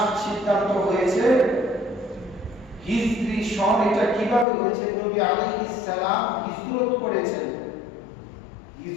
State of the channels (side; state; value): right; drops out; at 4.5 s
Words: সিদ্ধান্ত হয়েছে হিজরি সন। এটা কিভাবে হয়েছে? নবী আলাইহিস সালাম হিজরত করেছেন,